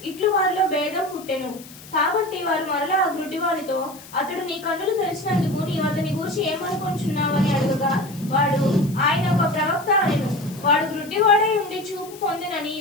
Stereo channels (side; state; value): left; noise; hiss, 19 dB below the sound